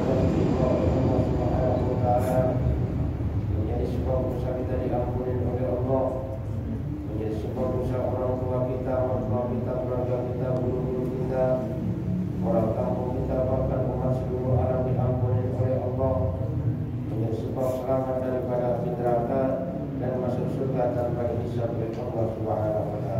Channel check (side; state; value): both; identical; correlation 1.00